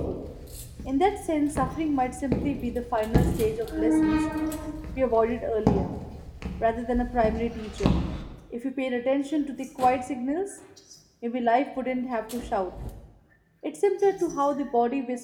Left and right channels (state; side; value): identical; both; correlation 1.00